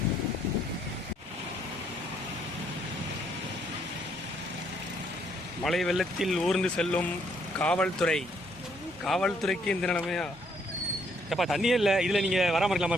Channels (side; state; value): both; normal; correlation 0.69